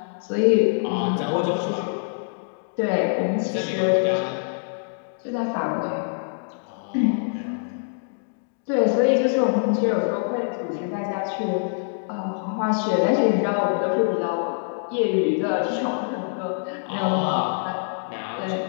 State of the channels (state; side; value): silent; right; digital silence